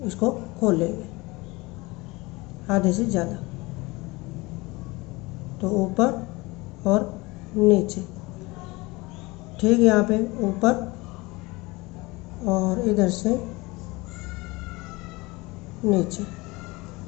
इसको खोल लेंगे, आधे से ज़्यादा। तो ऊपर और नीचे, ठीक, यहाँ पे ऊपर और इधर से नीचे।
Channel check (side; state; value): right; quieter; 23.2 dB